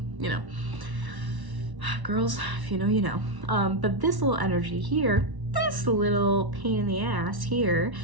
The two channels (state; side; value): late; left; 1.1 ms